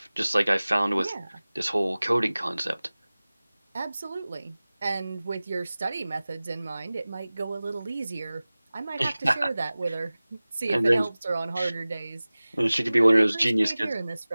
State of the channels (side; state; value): both; inverted; correlation -0.98